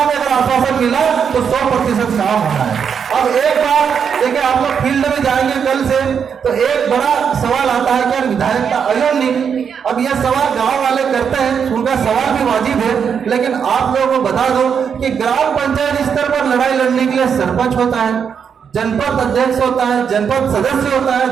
में अगर आश्वासन मिला तो 100% काम होना है। अब एक बात देखिए, आप लोग फील्ड में जाएंगे कल से तो एक बड़ा सवाल आता है कि विधायक का अयन नहीं। अब यह सवाल गांव वाले करते हैं, उनका सवाल भी वाजिब है, लेकिन आप लोगों को बता दो कि ग्राम पंचायत स्तर पर लड़ाई लड़ने के लिए सरपंच होता है, जनपद अध्यक्ष होता है, जनपद सदस्य होता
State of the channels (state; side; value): quieter; left; 7.1 dB